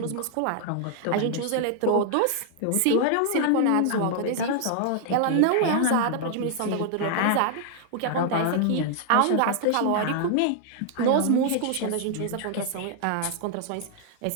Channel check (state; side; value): different; both; correlation 0.00